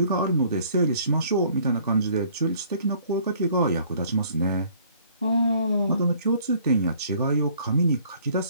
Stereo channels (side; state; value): both; inverted; correlation -0.58